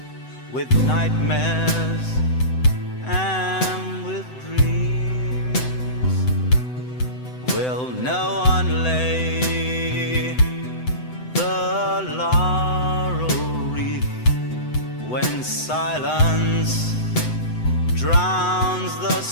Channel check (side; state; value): right; late; 7.9 ms